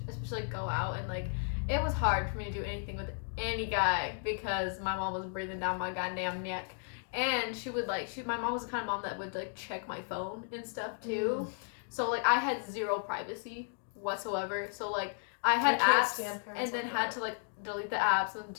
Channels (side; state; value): right; silent; 55 dB below the other